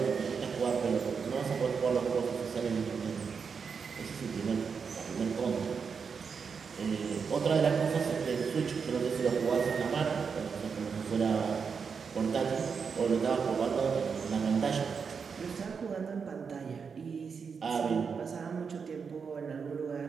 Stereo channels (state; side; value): quieter; left; 5.9 dB